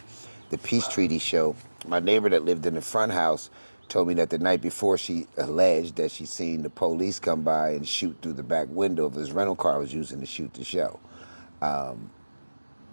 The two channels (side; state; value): both; inverted; correlation -1.00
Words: the peace treaty show, my neighbor that lived in the front house told me that the night before she alleged that she seen the police come by and shoot through the back window of his rental car I was using to shoot the show.